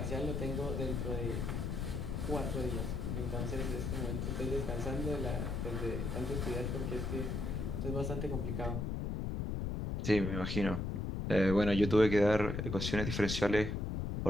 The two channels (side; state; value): left; noise; rumble, 2 dB below the sound